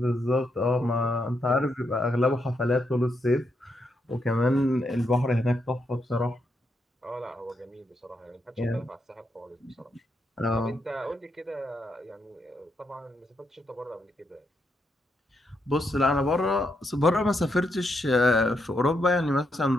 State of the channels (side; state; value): both; normal; correlation 0.80